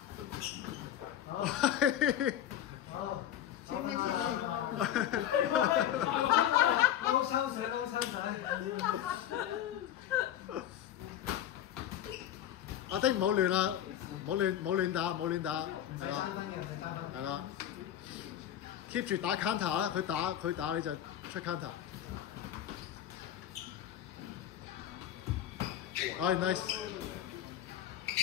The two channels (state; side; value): quieter; right; 11.0 dB